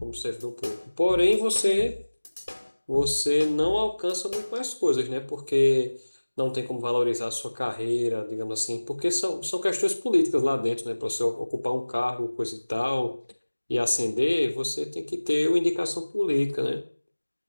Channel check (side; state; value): both; inverted; correlation -1.00